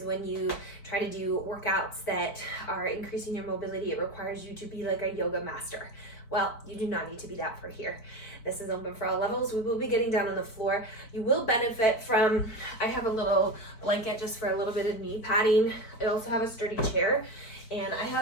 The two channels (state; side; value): late; right; 4.5 ms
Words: when you try to do workouts that are increasing your mobility, it requires you to be like a yoga master. Well, you do not need to be that for here. This is open for all levels. We will be getting down on the floor. You will benefit from, I have a little blanket just for a little bit of knee padding. I also have a sturdy chair, and I